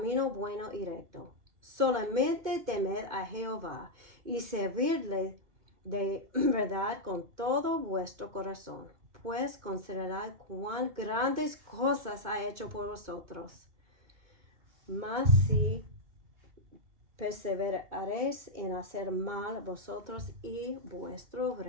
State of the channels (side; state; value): left; late; 2.2 ms